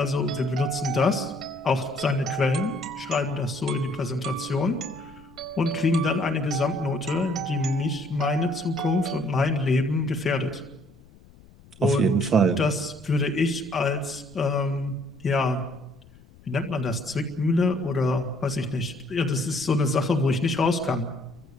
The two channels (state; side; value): noise; left; rumble, 24 dB below the sound